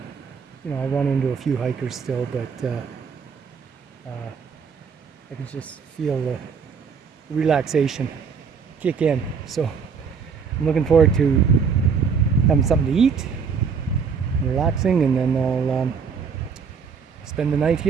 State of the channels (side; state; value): left; quieter; 6.0 dB